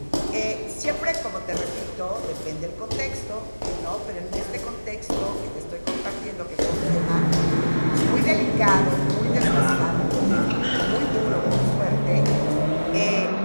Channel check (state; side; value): inverted; both; correlation -1.00